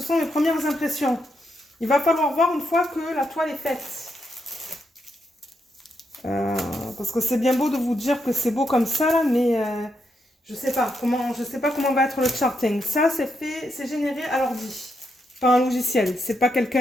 sont mes premières impressions. Il va falloir voir une fois que la toile est faite. Parce que c'est bien beau de vous dire que c'est beau comme ça, là, mais je sais pas comment va être le charting. Ça, c'est généré à l'ordi, pas un logiciel. C'est pas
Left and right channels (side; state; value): both; normal; correlation 0.81